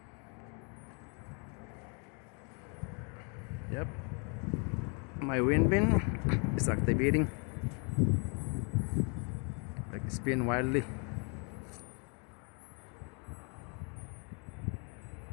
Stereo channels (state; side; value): quieter; right; 36.9 dB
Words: Yep, my wind bin is activating, like spin wildly.